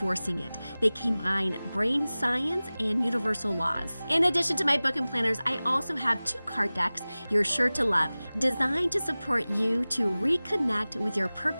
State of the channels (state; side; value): inverted; both; correlation -0.98